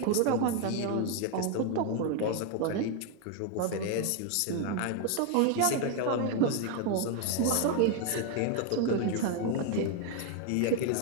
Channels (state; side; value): different; both; correlation 0.00